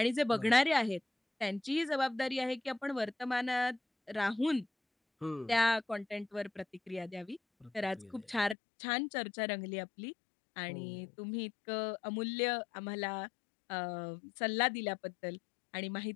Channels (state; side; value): drops out; right; at 8.6 s